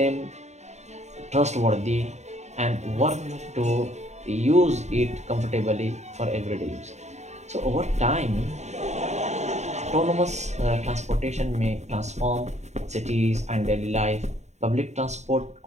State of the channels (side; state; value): left; late; 0.33 ms